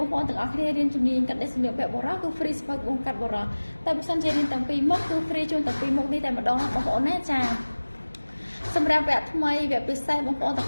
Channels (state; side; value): inverted; both; correlation -1.00